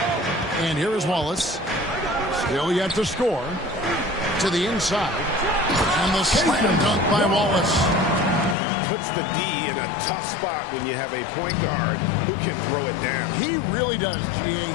And here is Wallace. Still yet to score. To the inside. And the slam dunk by Wallace. Puts the D in a tough spot when you have a point guard who can throw it down. He really does, G.A.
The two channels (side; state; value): right; drops out; at 8.6 s